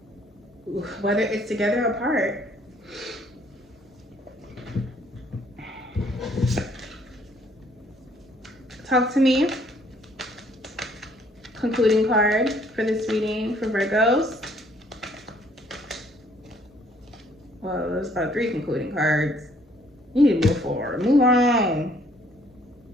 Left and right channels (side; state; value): both; normal; correlation 0.63